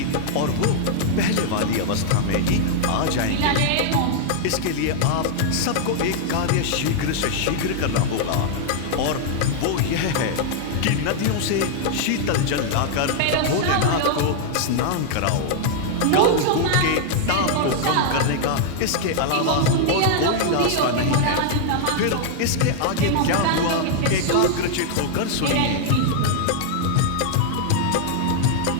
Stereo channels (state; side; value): different; both; correlation -0.01